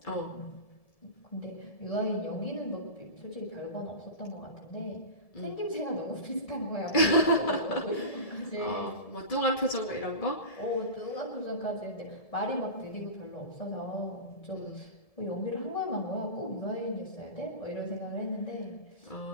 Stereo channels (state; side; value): late; right; 1.7 ms